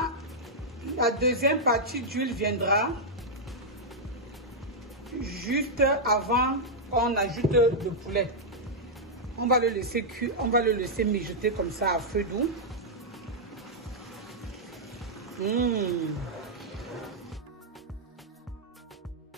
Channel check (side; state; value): both; normal; correlation -0.06